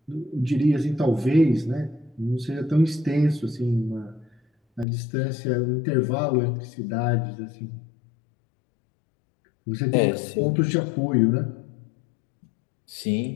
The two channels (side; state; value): right; drops out; at 4.9 s